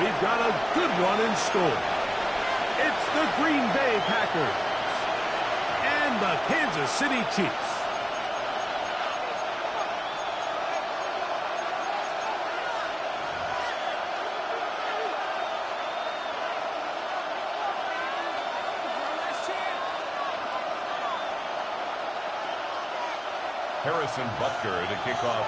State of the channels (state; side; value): identical; both; correlation 1.00